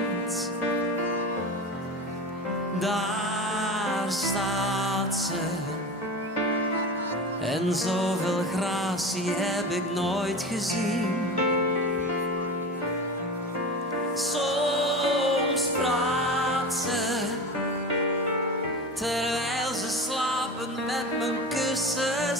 Daar staat ze. En zoveel gratie heb ik nooit gezien. Soms praat ze, terwijl ze slapend met mijn kussen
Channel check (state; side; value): normal; both; correlation 0.29